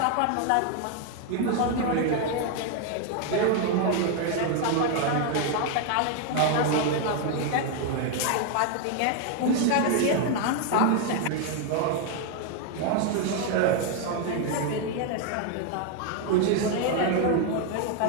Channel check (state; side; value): different; both; correlation 0.01